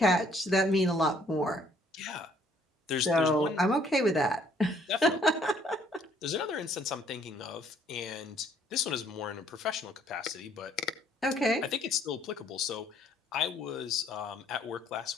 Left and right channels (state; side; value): normal; both; correlation 0.63